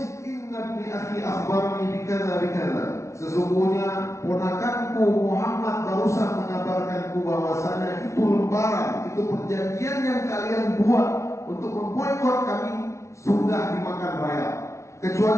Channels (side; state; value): right; late; 0.14 ms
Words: inna bi akhi akhbarani bikadza bikadza. Sesungguhnya ponakanku Muhammad barusan mengabarkanku bahwasanya itu lembaran, itu perjanjian yang kalian buat untuk memboikot kami sudah dimakan raya.